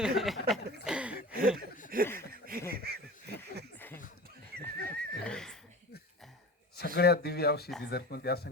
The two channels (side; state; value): both; normal; correlation 0.35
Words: सगळ्यात दिव्य औषधी जर कोणती असेल